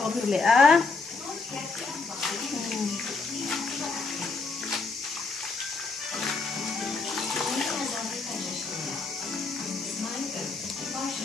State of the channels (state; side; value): quieter; right; 4.2 dB